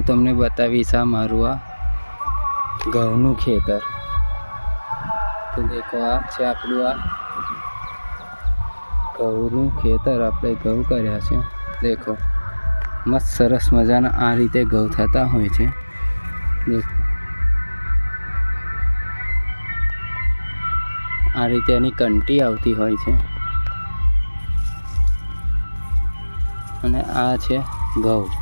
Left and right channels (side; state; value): both; inverted; correlation -1.00